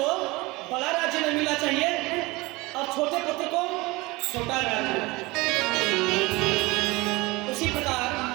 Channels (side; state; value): left; quieter; 22.6 dB